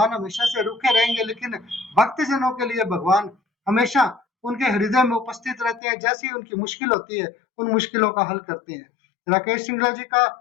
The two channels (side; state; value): right; drops out; at 5.8 s